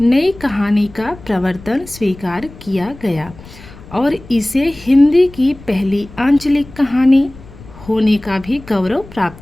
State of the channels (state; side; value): noise; left; rumble, 19 dB below the sound